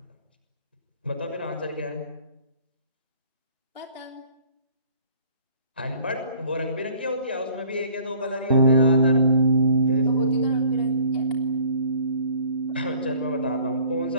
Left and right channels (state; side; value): inverted; both; correlation -0.54